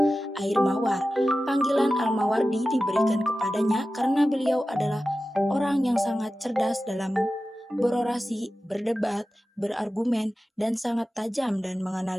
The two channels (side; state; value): both; normal; correlation 0.94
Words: air mawar. Panggilan Al-Mawardi diberikan kepadanya karena beliau adalah orang yang sangat cerdas dalam berorasi, berdebat, berargumen, dan sangat tajam dan